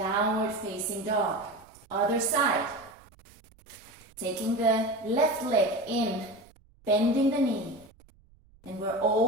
facing dog. Other side. Taking the left leg in, bending the knee. And we're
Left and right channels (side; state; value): right; noise; rumble, 29 dB below the sound